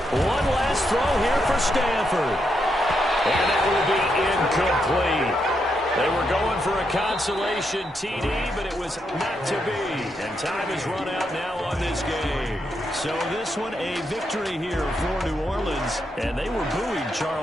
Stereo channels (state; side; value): normal; both; correlation 0.81